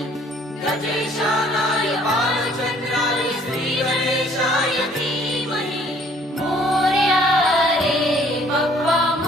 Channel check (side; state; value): both; normal; correlation 0.59